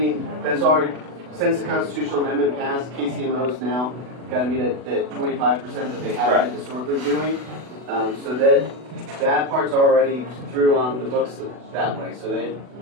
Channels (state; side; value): late; left; 40 ms